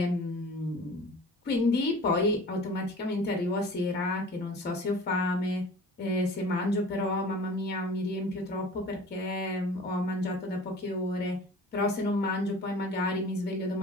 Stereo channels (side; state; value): both; normal; correlation 0.43